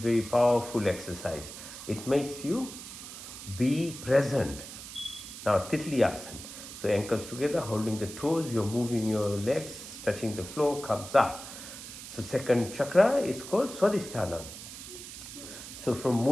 powerful exercise. It makes you be present. Now Titli Asana. So ankles together, holding the toes, you're moving your legs, touching the floor, comes up. So second chakra is called Swadhisthana. So from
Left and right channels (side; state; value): right; noise; hiss, 12 dB below the sound